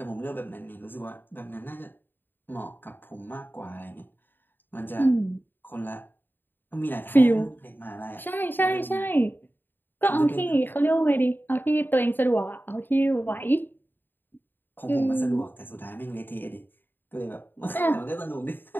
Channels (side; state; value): right; late; 0.094 ms